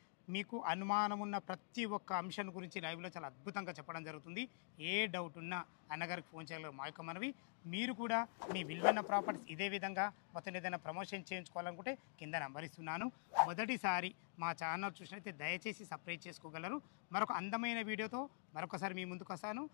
మీకు అనుమానం ఉన్న ప్రతి ఒక్క అంశం గురించి లైవ్లో చాలా అద్భుతంగా చెప్పడం జరుగుతుంది. ఏ డౌట్ ఉన్నా అన్నగారికి ఫోన్ చేయగలరు. మా యొక్క మనవి, మీరు కూడా మీ విలువైన ప్రాపర్టీస్ ఇదే విధంగా మొత్తం ఏదైనా ప్రమోషన్ చేయించుకోవాలనుకుంటే కింద నంబర్ ఇస్తున్నాను. మొదటిసారి మా ఛానల్ చూసినైతే దయచేసి సబ్స్క్రైబ్ చేసుకోగలరు. మరొక అందమైన వీడియోతో మరొకసారి మీ ముందుకు వస్తాను.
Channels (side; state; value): right; silent; digital silence